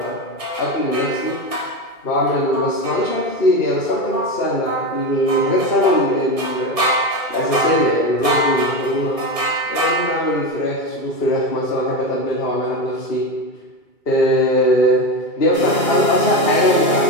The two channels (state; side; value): late; right; 2.3 ms